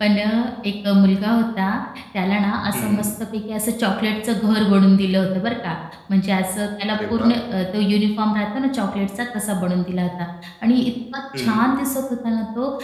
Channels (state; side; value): identical; both; correlation 1.00